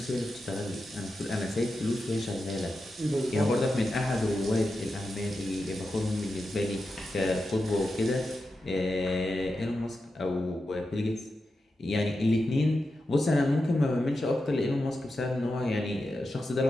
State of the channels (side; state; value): both; normal; correlation 0.90